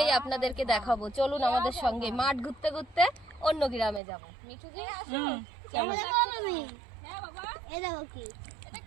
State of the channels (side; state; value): left; drops out; at 4.0 s